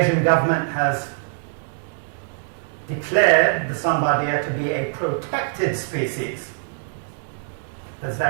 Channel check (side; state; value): left; silent; 63 dB below the other